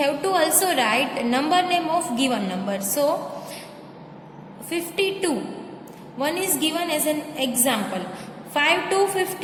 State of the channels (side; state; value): both; identical; correlation 1.00